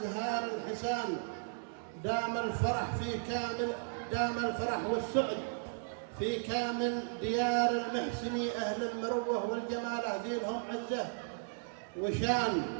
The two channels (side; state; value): left; silent; digital silence